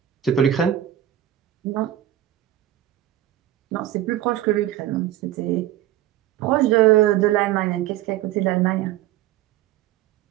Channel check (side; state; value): left; quieter; 12.8 dB